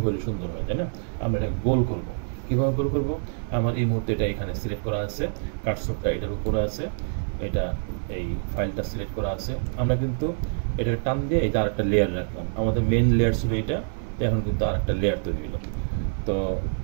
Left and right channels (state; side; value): silent; left; digital silence